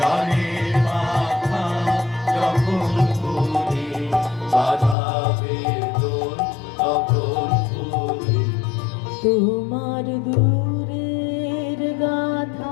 গানের বাধা যখন খুলে বাধা বেদন তখন খুলে তোমার দূরের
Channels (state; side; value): drops out; right; at 5.0 s